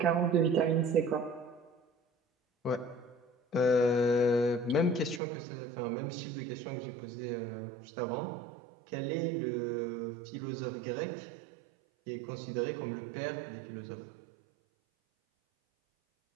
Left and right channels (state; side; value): drops out; left; at 5.2 s